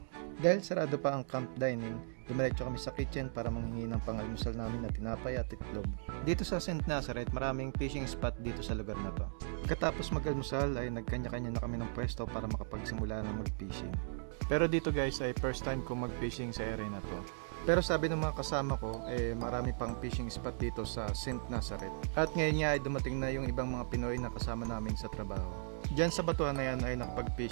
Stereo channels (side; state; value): left; silent; digital silence